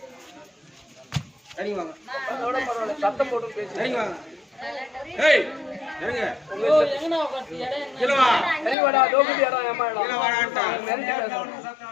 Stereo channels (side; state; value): right; drops out; at 8.8 s